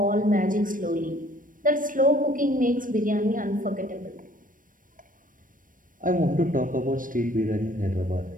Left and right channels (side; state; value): left; late; 0.39 ms